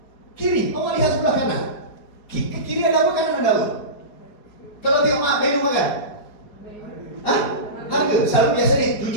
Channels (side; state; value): right; late; 4.8 ms